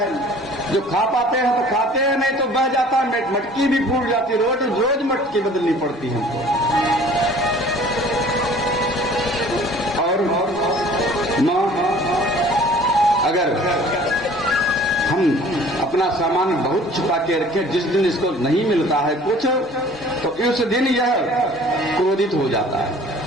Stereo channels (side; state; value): both; normal; correlation 0.50